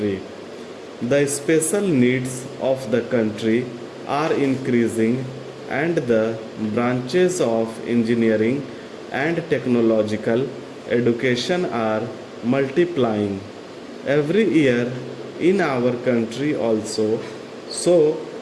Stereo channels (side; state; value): both; identical; correlation 1.00